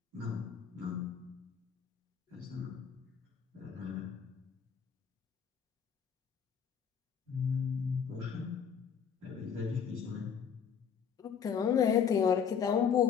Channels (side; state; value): right; quieter; 7.3 dB